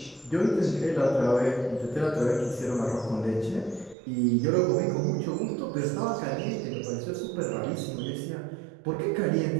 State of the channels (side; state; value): left; drops out; at 4.0 s